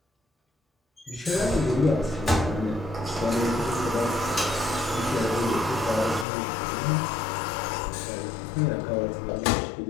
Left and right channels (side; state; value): right; drops out; at 6.2 s